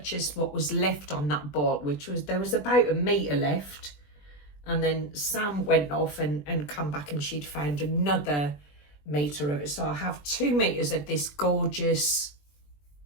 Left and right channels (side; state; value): right; late; 20 ms